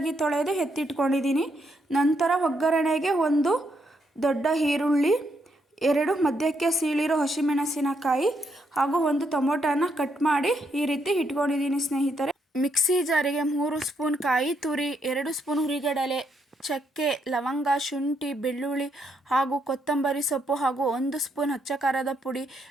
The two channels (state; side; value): normal; both; correlation 0.76